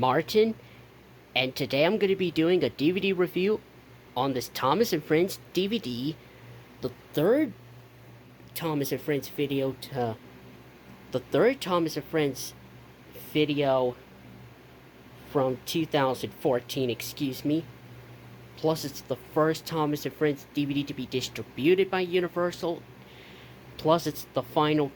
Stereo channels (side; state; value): both; identical; correlation 1.00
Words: and today I'm going to be doing a DVD review on this Thomas and Friends DVD, the third Thomas and Friends video from 2014, excuse me. Plus, it's the first Thomas and Friends DVD to be distributed by Universal. Plus, it's the final